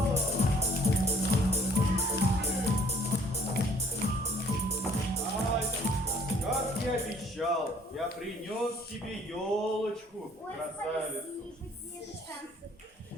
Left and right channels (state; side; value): normal; both; correlation 0.59